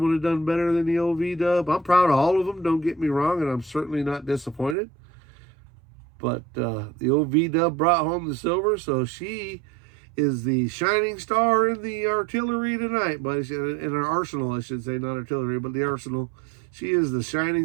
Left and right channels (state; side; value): drops out; left; at 4.8 s